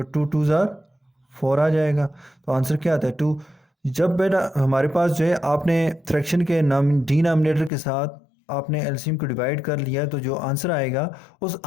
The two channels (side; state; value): right; drops out; at 7.7 s